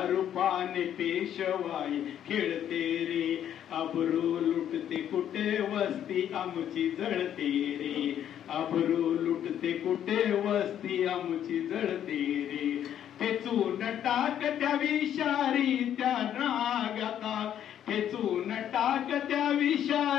रूपाने पेशवाई खेळते रे. अब्रू लुटते कुठे वस्ती आमची जळते रे, अब्रू लुटते कुठे वस्ती आमची जळते रे. ठेचून टाक त्या विषारी त्या नागाता, ठेचून टाक त्या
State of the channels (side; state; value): right; quieter; 10.2 dB